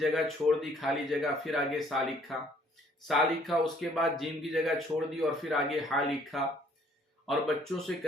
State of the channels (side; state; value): both; normal; correlation 0.61